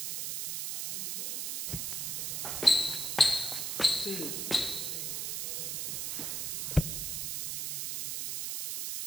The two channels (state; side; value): noise; right; hiss, 1 dB below the sound